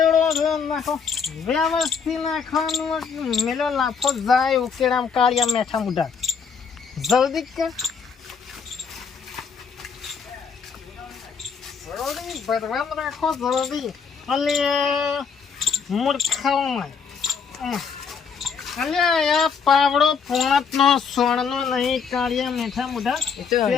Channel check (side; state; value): right; quieter; 6.1 dB